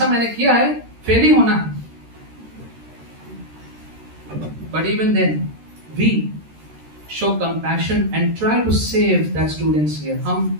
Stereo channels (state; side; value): late; left; 13 ms